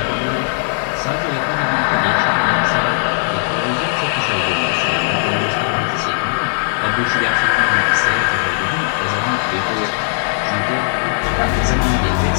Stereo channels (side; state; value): right; silent; digital silence